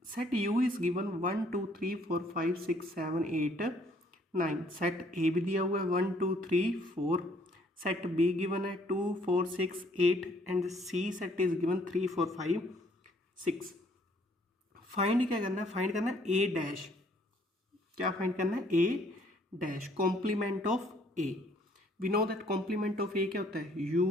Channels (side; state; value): both; normal; correlation 0.63